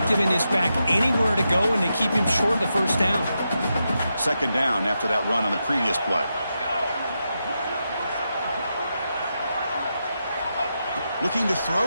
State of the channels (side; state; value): both; inverted; correlation -0.86